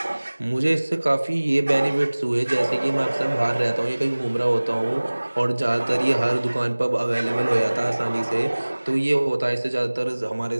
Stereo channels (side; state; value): both; inverted; correlation -1.00